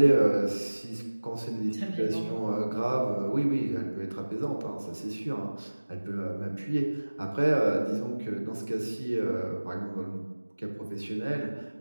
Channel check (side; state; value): both; inverted; correlation -1.00